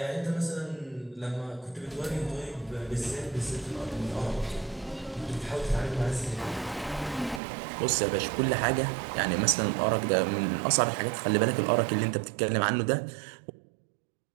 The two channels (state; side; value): drops out; left; at 7.4 s